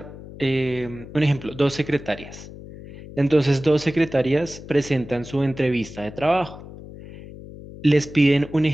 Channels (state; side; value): noise; left; hum, 15 dB below the sound